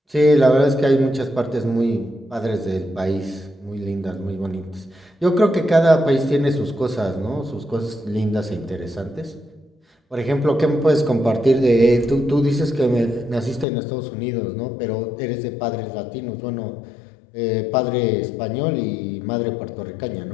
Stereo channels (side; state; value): right; drops out; at 13.7 s